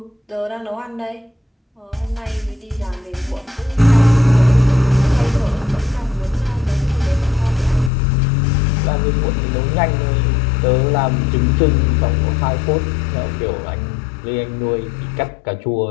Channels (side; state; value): right; drops out; at 7.9 s